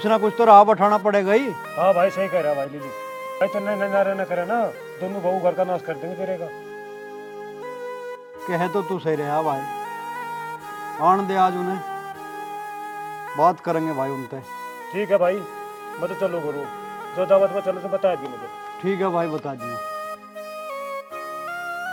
ना कुछ तो राह बैठाना पड़ेगा ही। हाँ भाई सही कह रहा भाई नीलू। भाई तो नारे न करे ना, दोनों बहू घर का नाश कर देंगे तेरे का। कहे तो तू सही रहा भाई, आन दे आज उन्हें, बात करेंगे भाई उनसे। ठीक है भाई, मैं तो चलो करूँ, जो दावत में चलो तो बता दी मुझे। ठीक है भाई बता दिया।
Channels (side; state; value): both; identical; correlation 1.00